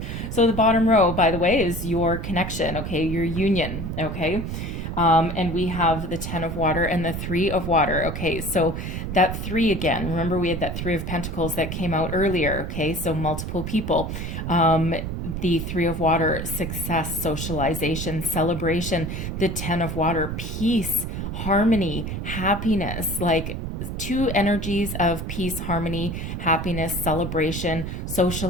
so the bottom row, by the way, is your connection, okay, your union, okay? And we have the 10 of water and the 3 of water. Okay, so that 3 again, remember we had that 3 of pentacles that came out earlier. Okay, so multiple people. The 3 of water, success, socialization, celebration. The 10 of water, peace, harmony, happiness, like 2 energies of peace, harmony, happiness, celebration,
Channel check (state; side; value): noise; right; rumble, 5 dB below the sound